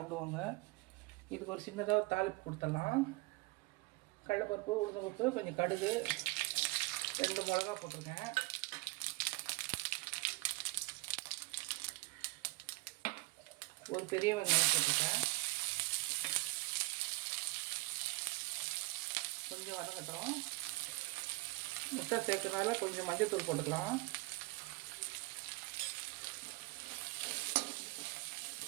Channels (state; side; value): quieter; left; 24.9 dB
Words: இதுக்கு ஒரு சின்னதாக ஒரு தாளிப்பு கொடுத்துடலாம். கடலைப்பருப்பு, உளுந்தம்பருப்பு, கொஞ்சம் கடுகு, 2 மிளகா போட்டிருக்கேன். ஒரு பெரிய வெங்காயம் போட்டிருக்கேன். கொஞ்சம் வதங்கட்டும். முட்டை சேர்க்கறனால கொஞ்சம் மஞ்சள்தூள் போட்டுக்கலாம்.